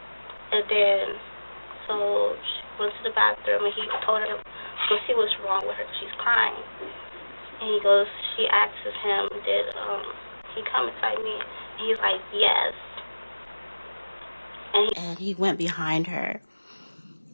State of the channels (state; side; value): inverted; both; correlation -1.00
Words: And then, so she went to the bathroom and he told her to see what's wrong with her because she's crying. And she asks him, did he come inside me? And he's like, yes. And he went behind her.